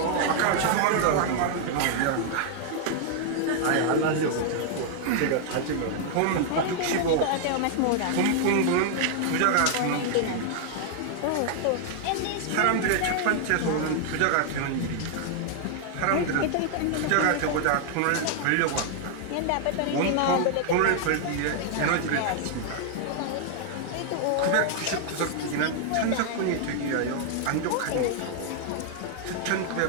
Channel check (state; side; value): different; both; correlation 0.00